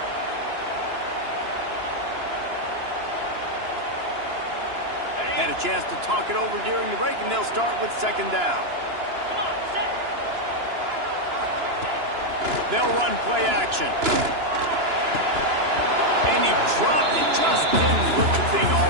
Had a chance to talk it over during the break, and they'll start with second down. They'll run play action. And he dropped it, just didn't look the thing all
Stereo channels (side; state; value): left; late; 2.9 ms